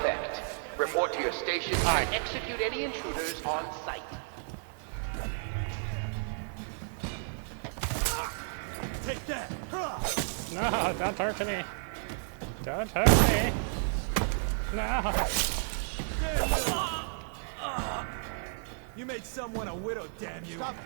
Report to your stations and execute any intruders on site. Take that! No, don't hurt me. Don't hurt me. No. You made someone a widow, damn you! Stop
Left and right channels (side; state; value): left; silent; 55 dB below the other